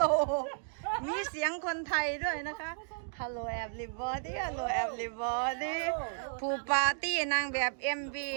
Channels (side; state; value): left; silent; digital silence